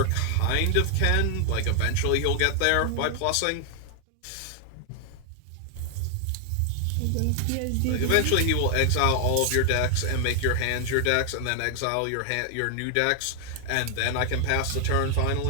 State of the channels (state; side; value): different; both; correlation 0.00